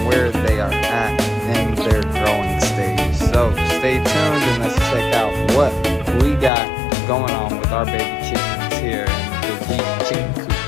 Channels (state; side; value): drops out; right; at 6.5 s